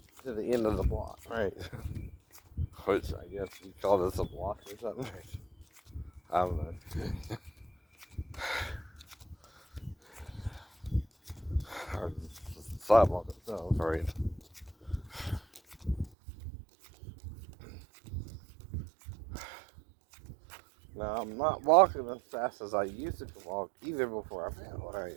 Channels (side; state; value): left; drops out; at 16.1 s